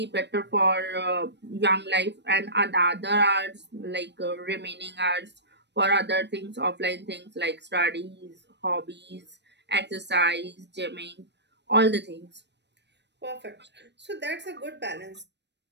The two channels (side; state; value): left; late; 0.50 ms